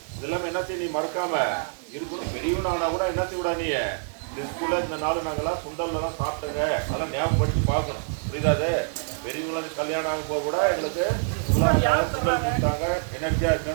இதெல்லாம் என்ன செய்ய நீ மறக்காம இருக்கணும். பெரியவனானா கூட என்ன செய்ய விடா, நீ ஸ்கூல்ல இந்த நாள் நாங்கெல்லாம் சுண்டல்லாம் சாப்பிட்டங்க, அதெல்லாம் ஞாபகப்படுத்தி பார்க்கணும். புரியுதாது? பெரியவங்களுக்கு கல்யாணம் ஆகும் போது கூட எங்களுக்கு சுண்டல் கொடுத்தாங்க, எனர்ஜியா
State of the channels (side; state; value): left; silent; digital silence